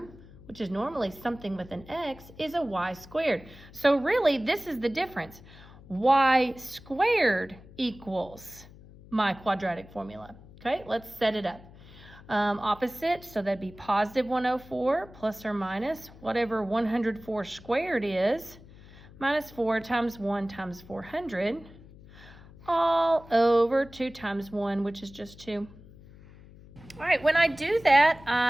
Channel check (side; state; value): left; noise; hum, 20 dB below the sound